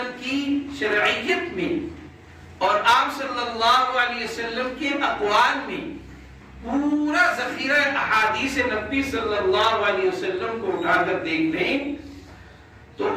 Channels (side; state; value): both; identical; correlation 1.00